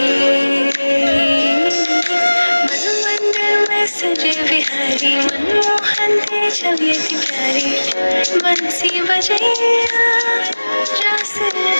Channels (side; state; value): both; inverted; correlation -1.00